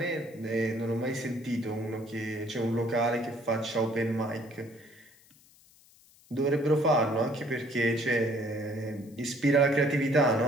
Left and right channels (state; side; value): noise; left; hiss, 27 dB below the sound